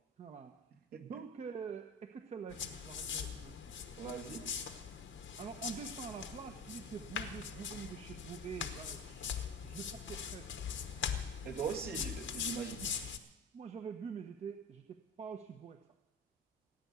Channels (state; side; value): normal; both; correlation 0.32